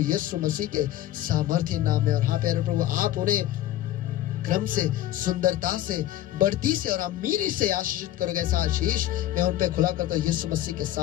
यीशु मसीह के सामर्थ्य नाम में। और हाँ प्यारे प्रभु, आप उन्हें क्रम से, सुंदरता से, बढ़ती से और अमीरी से आशीषित करोगे। ऐसा आशीष मैं उन पे खुला करता हूं यीशु मसीह के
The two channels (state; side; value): quieter; right; 13.6 dB